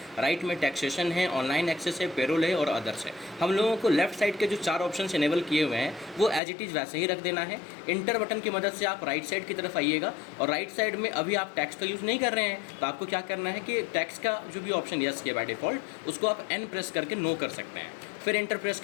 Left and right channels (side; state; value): right; drops out; at 6.4 s